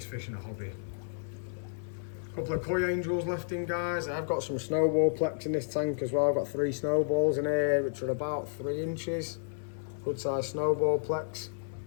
fish in the hobby. A couple of koi angels left in, guys. I've got some snowball plex in this tank as well. I've got 3 snowballs in here, which are about 3 inches. Good size snowball plex.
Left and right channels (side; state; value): right; silent; digital silence